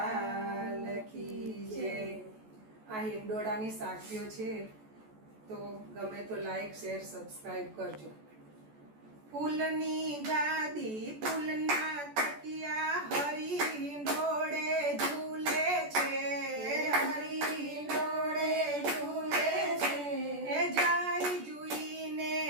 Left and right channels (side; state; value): left; late; 14 ms